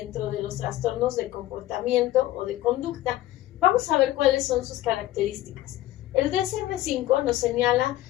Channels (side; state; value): right; quieter; 14.9 dB